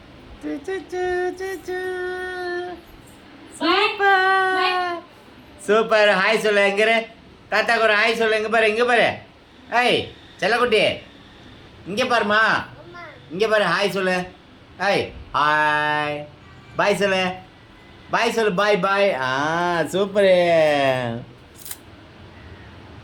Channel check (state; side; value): identical; both; correlation 1.00